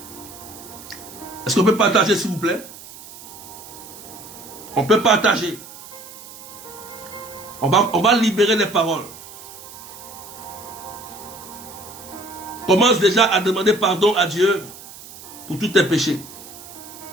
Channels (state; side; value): noise; right; hiss, 16 dB below the sound